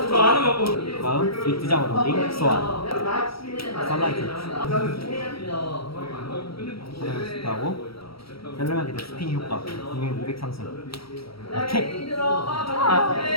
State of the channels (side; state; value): right; late; 0.75 ms